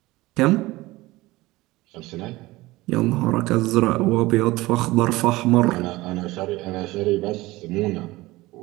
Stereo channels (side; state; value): left; quieter; 19.6 dB